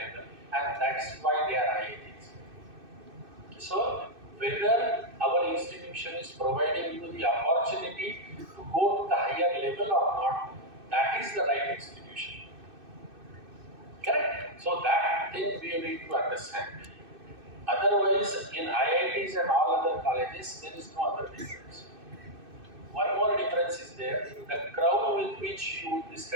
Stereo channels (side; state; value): left; late; 2.6 ms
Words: and that's why they are IITs. So whether our institution is providing you the opportunity to go to the higher level or not, that is the right institution. Correct? So that thing we need to understand. Otherwise, in IITs and all other colleges, there is no other difference. One more difference is there. The crowd with which you would be